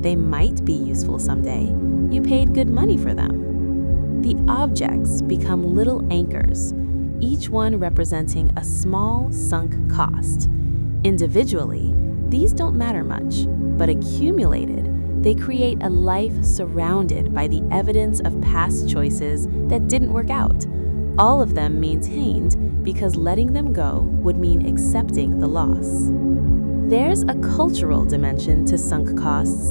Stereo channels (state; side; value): inverted; both; correlation -1.00